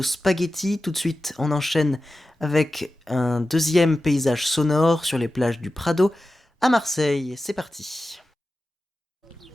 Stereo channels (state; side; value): normal; both; correlation 0.94